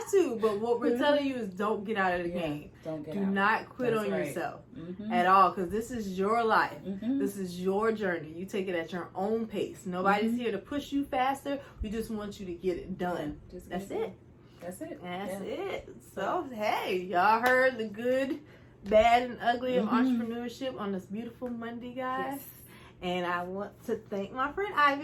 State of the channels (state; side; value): identical; both; correlation 1.00